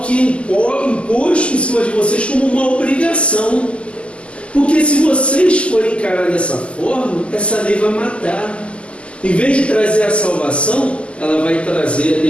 que é imposto em cima de vocês como uma obrigação, porque se vocês forem encarar dessa forma, essa lei vai matar. Em vez de trazer a salvação, ela vai trazer a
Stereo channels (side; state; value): right; late; 0.055 ms